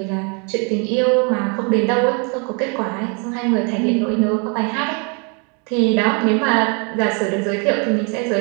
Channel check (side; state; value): left; quieter; 35.0 dB